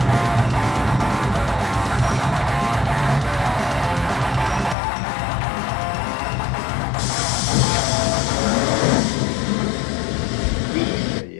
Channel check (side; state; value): right; drops out; at 4.8 s